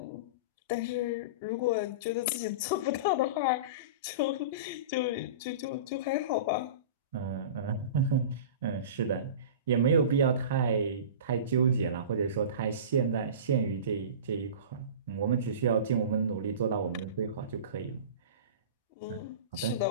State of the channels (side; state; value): both; inverted; correlation -0.33